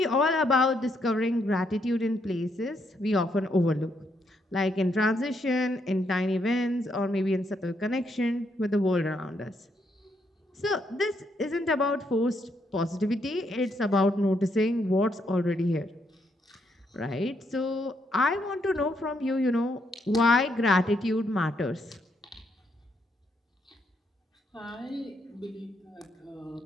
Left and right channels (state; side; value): normal; both; correlation 0.75